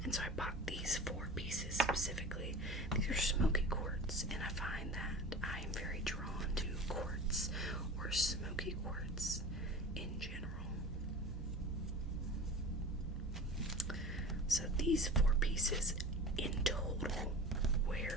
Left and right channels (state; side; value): normal; both; correlation 0.36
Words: And so I bought these 4 pieces specifically. These are smoky quartz, and I find that I am very drawn to quartz or smoky quartz in general. So these 4 pieces in total